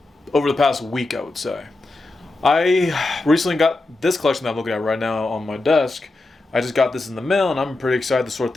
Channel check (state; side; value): quieter; right; 3.1 dB